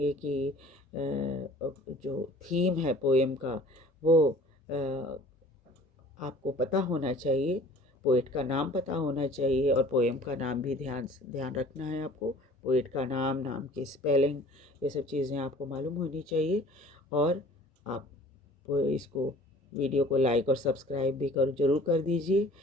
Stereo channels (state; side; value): normal; both; correlation 0.49